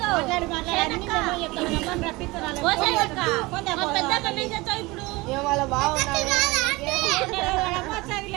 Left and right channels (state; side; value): quieter; left; 22.5 dB